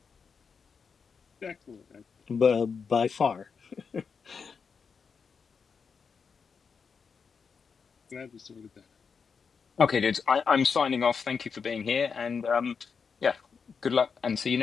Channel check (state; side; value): quieter; right; 5.8 dB